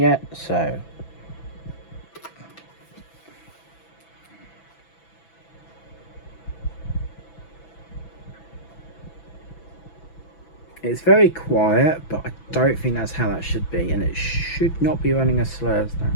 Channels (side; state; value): right; late; 6.0 ms